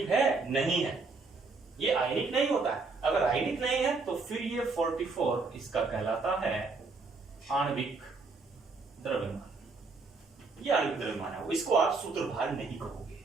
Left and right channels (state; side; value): quieter; left; 4.1 dB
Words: है, नहीं है, ये आयनिक नहीं होता है। अगर आयनिक नहीं है तो फिर ये 44 इसका कहलाता है आणविक द्रव्यमान। ये आणविक द्रव्यमान है, इसको आप सूत्रभार नहीं कहोगे।